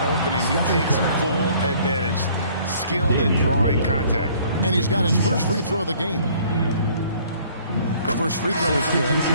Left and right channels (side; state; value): both; inverted; correlation -0.57